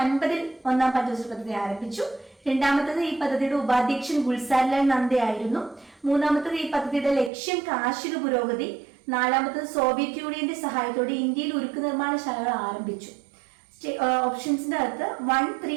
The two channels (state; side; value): drops out; left; at 7.3 s